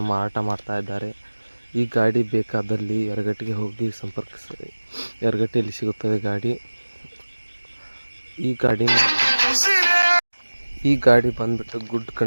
ಮಾರಾಟ ಮಾಡ್ತಾ ಇದ್ದಾರೆ. ಈ ಗಾಡಿ ಬೇಕಾದಲ್ಲಿ ಯರಗಟ್ಟಿಗೆ ಹೋಗಿ ಸಂಪರ್ಕಿಸಿ. ಯರಗಟ್ಟಿಯಲ್ಲಿ ಸಿಗುತ್ತದೆ ಗಾಡಿ. ಈ ಗಾಡಿ ಬಂದುಬಿಟ್ಟು ಗುಡ್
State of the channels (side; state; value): both; inverted; correlation -1.00